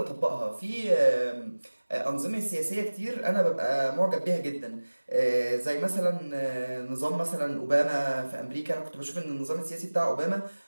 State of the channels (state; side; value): inverted; both; correlation -1.00